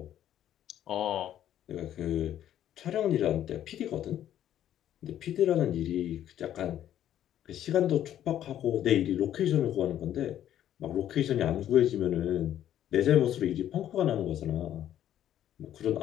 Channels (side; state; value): right; quieter; 11.3 dB